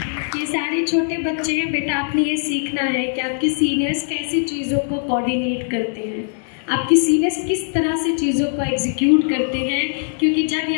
ये सारे छोटे बच्चे हैं बेटा, आपने ये सीखना है कि आपके सीनियर्स कैसी चीज़ों को कोऑर्डिनेट करते हैं, आपकी सीनियर्स किस तरह से चीज़ों को एग्जीक्यूट करते हैं, क्योंकि जब ये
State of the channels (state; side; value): silent; right; 63 dB below the other